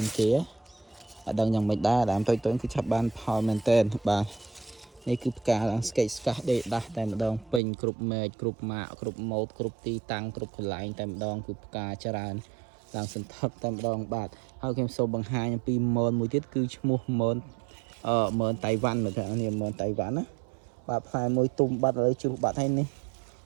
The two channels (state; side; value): drops out; left; at 7.6 s